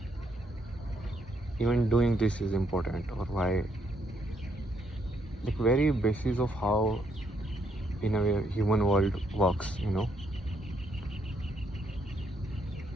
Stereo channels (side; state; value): both; normal; correlation 0.73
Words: even doing this is important, or why, like, very basis of how in a way human world works.